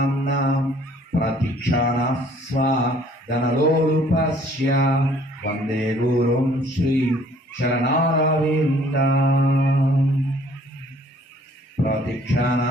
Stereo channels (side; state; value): both; normal; correlation 0.58